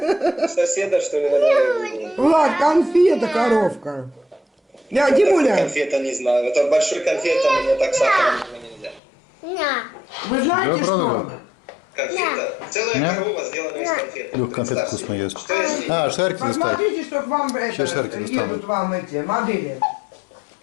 соседа, что ли, наверное. Влад, конфета, коровка. Я, Димуля, Конфета не знаю. Это большой конфета, мне так сахаром нельзя. вы знаете, Да, правда? что? Конфета. Целая Нет? корова сделана из конфеты. Лёх, конфет Представьте. вкусно ест. Что если А, шарики достать. Посмотрите, что к вам Сейчас шарики достану. едут вам эти модели.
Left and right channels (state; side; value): drops out; right; at 9.0 s